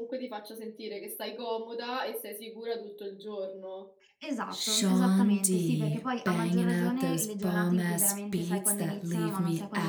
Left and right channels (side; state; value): both; identical; correlation 1.00